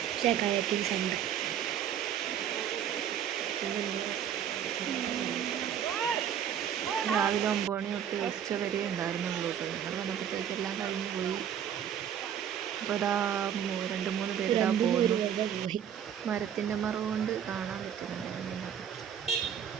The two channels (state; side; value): quieter; left; 9.3 dB